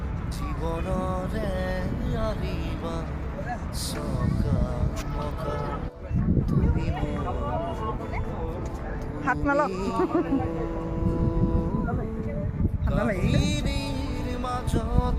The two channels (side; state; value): both; identical; correlation 1.00